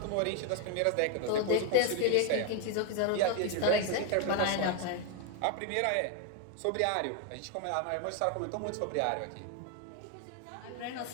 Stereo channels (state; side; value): different; both; correlation 0.01